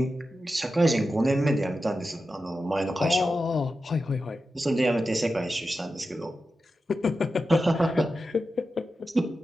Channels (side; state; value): both; normal; correlation 0.91